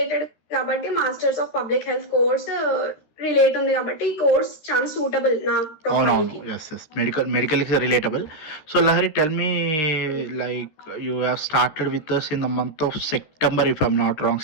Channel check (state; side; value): late; right; 13 ms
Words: కాబట్టి masters of public health course relate ఉంది కాబట్టి ఈ కోర్స్ చాలా సూటబుల్ నా ప్రొఫైల్ కి. అవునవును. Yes. Medical is relatable. So Lahari, tell me, like you have started with us in the month of September, if I'm not wrong.